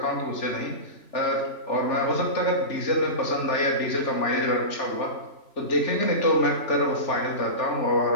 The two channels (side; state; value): right; late; 3.4 ms